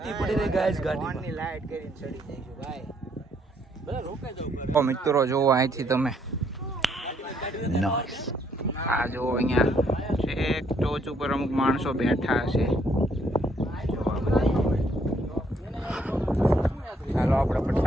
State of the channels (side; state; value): both; normal; correlation 0.69